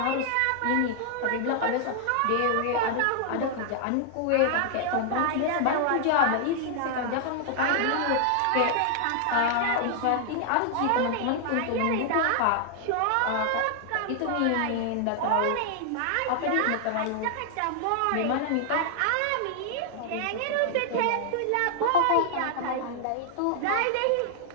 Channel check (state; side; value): different; both; correlation 0.00